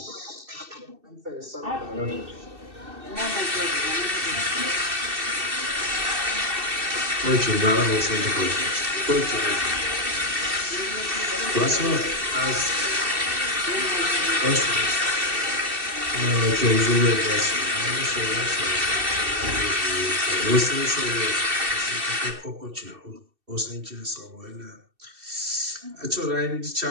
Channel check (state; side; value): late; left; 2.6 ms